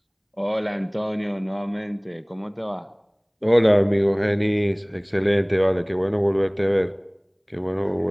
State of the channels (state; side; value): identical; both; correlation 1.00